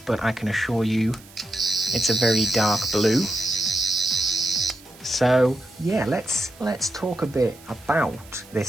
I can assure you it's a very dark blue. So yeah, let's talk a bit about this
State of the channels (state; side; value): noise; right; hiss, 23 dB below the sound